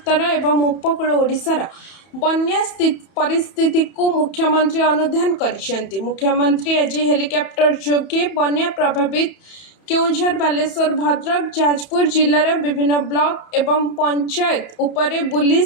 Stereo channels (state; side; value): late; right; 31 ms